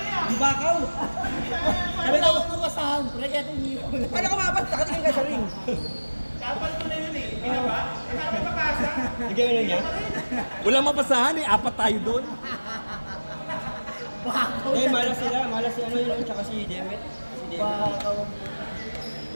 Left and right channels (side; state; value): both; inverted; correlation -1.00